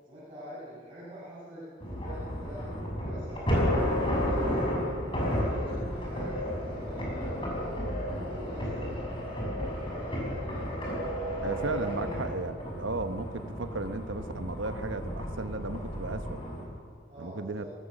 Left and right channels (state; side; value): normal; both; correlation 0.43